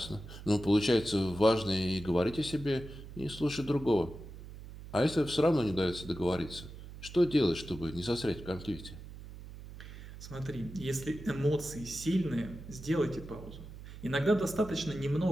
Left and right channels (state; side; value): noise; right; hum, 14 dB below the sound